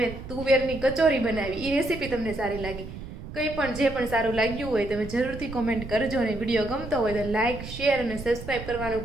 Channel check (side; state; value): right; noise; rumble, 11 dB below the sound